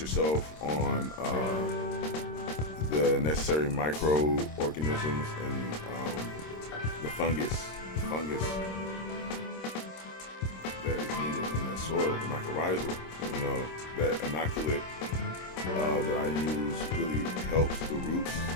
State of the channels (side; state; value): right; late; 26 ms